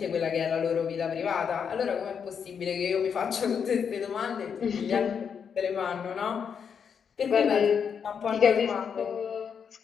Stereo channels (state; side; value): quieter; right; 7.0 dB